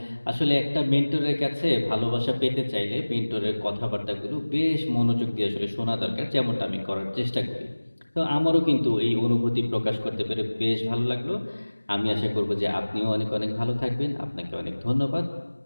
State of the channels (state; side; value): inverted; both; correlation -1.00